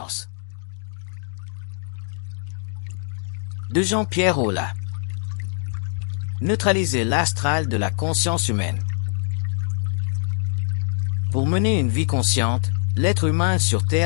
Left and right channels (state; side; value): silent; right; 59 dB below the other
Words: De Jean-Pierre Aulas. Neutraliser l'astral de la conscience humaine. Pour mener une vie consciente, l'être humain sur